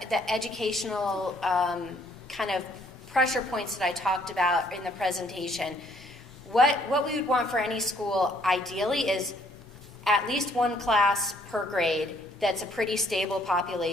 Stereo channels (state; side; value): normal; both; correlation 0.64